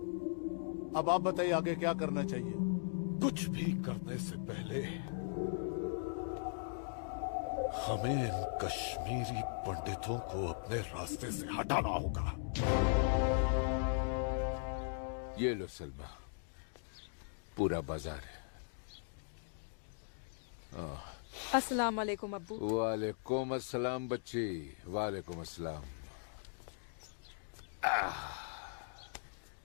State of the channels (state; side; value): silent; right; digital silence